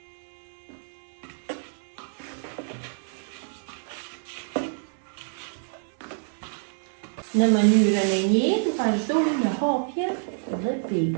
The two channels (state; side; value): silent; left; digital silence